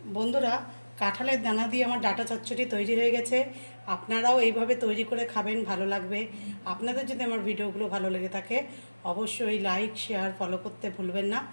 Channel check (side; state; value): both; inverted; correlation -1.00